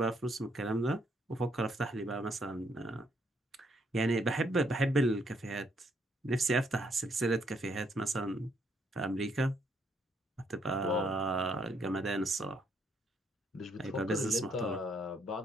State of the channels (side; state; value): both; normal; correlation 0.72